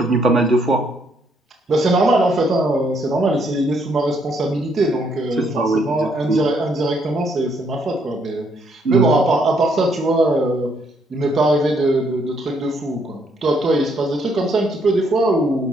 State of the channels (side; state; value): both; normal; correlation 0.71